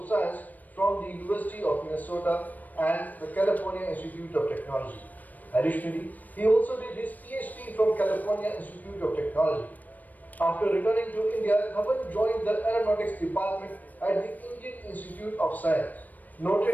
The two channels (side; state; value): right; late; 0.082 ms